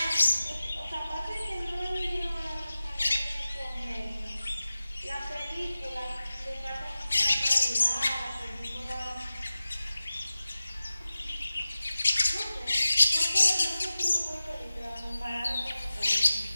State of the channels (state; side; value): inverted; both; correlation -0.96